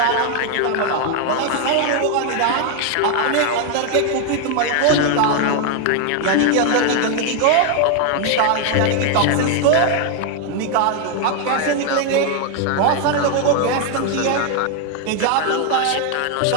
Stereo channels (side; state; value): both; different; correlation 0.01